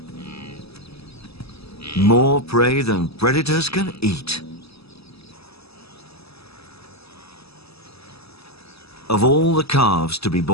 More prey than predators can eat. Of all the calves to be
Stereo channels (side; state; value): right; late; 0.78 ms